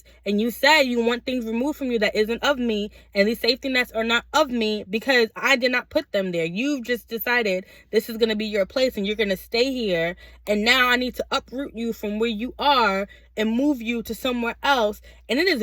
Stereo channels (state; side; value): identical; both; correlation 1.00